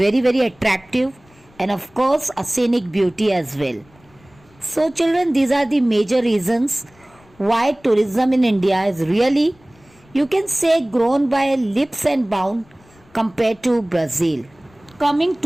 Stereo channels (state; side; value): noise; left; rumble, 30 dB below the sound